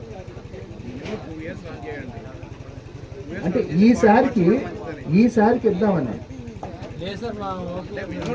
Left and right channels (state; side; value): identical; both; correlation 1.00